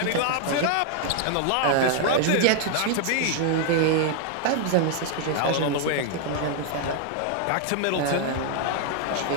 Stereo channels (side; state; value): both; different; correlation 0.00